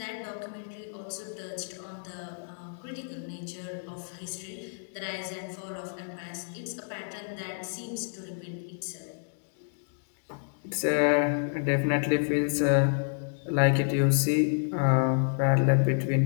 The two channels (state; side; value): silent; right; digital silence